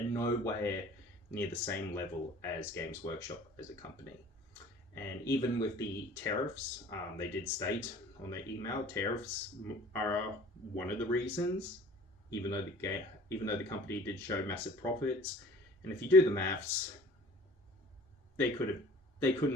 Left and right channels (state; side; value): normal; both; correlation 0.47